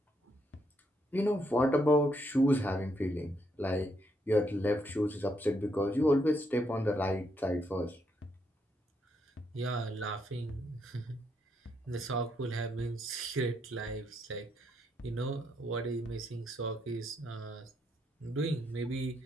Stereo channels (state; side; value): normal; both; correlation 0.76